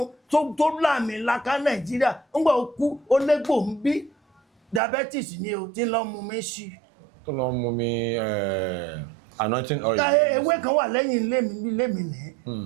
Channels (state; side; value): drops out; left; at 4.8 s